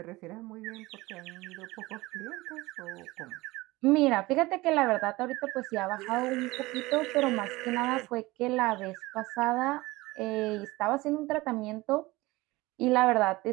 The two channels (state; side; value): quieter; left; 20.6 dB